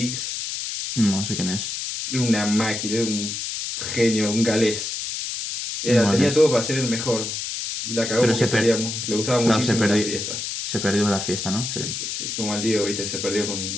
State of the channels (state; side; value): noise; left; hiss, 4 dB below the sound